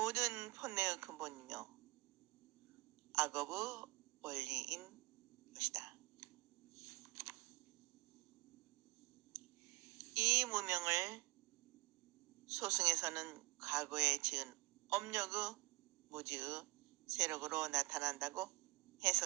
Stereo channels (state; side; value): quieter; left; 22.3 dB